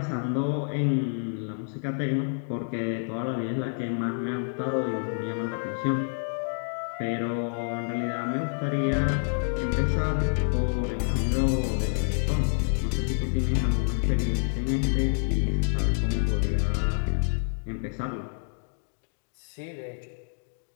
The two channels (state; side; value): silent; right; digital silence